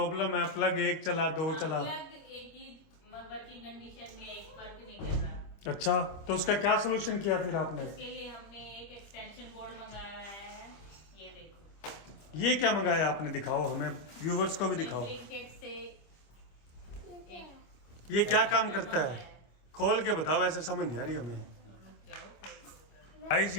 है, प्लग एक चला दो चला। प्लग एक ही वर्किंग कंडीशन में एक वर्क नहीं कर रहा। अच्छा, तो उसका क्या सोल्यूशन किया फिर आपने? इसके लिए हमने एक एक्सटेंशन बोर्ड मंगाया है, ये देखो। ये क्या मंगाया आपने, दिखाओ हमें, व्यूवर्स को भी दिखाओ। ब्लिंकिट से ये क्या काम करता है, खोल के बताओ, ऐसे समझ नहीं आ रही हमें। गाइस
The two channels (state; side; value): late; right; 25 ms